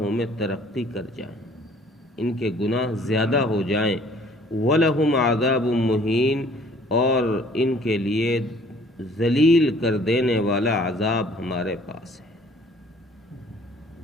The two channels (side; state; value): both; normal; correlation 0.56